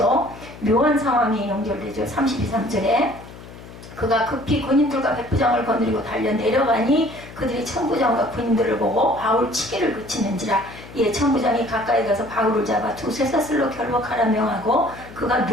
묘한 상황이 연결되죠. 32, 3절에 그가 급히 군인들과 백부장을 거느리고 달려 내려가니 그들이 천부장과 군인들을 보고 바울 치기를 그치는지라. 천부장이 가까이 가서 바울을 잡아 두 쇠사슬로 결박하라 명하고 그가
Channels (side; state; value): left; noise; hum, 17 dB below the sound